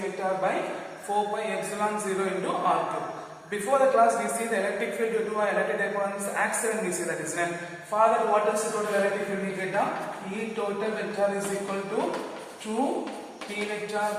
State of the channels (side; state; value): both; identical; correlation 1.00